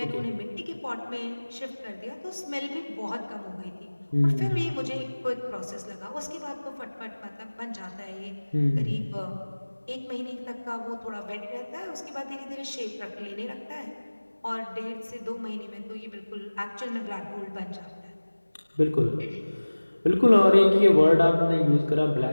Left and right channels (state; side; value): inverted; both; correlation -1.00